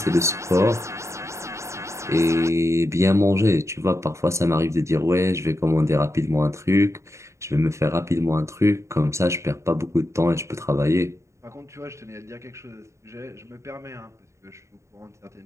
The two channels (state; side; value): late; left; 0.14 ms